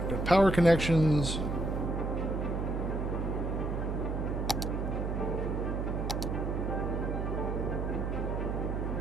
Got power connections.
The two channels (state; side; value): noise; right; hum, 2 dB below the sound